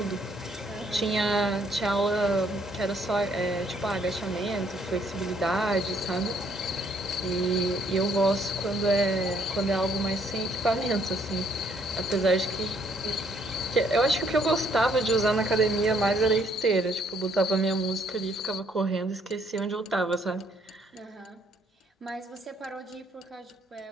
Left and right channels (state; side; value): normal; both; correlation 0.67